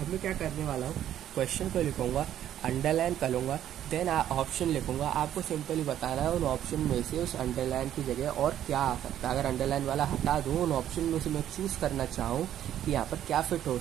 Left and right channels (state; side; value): quieter; left; 11.2 dB